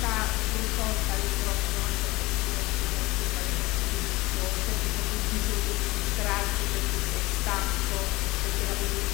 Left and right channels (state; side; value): quieter; right; 21.2 dB